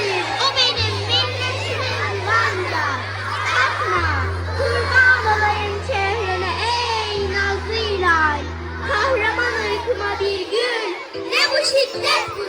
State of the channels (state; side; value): identical; both; correlation 1.00